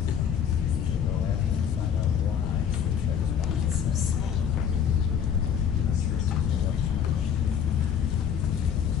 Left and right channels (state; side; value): quieter; right; 8.1 dB